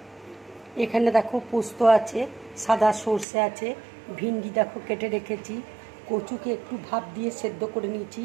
এখানে দেখো পোস্ত আছে, সাদা সর্ষে আছে, ভিন্ডি দেখো কেটে রেখেছি, কচুকে একটু ভাপ দিয়ে সেদ্ধ করে নিয়েছি,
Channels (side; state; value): left; drops out; at 3.2 s